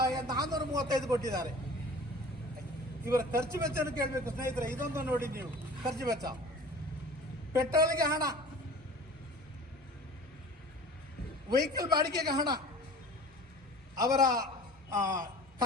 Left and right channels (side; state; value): both; normal; correlation 0.42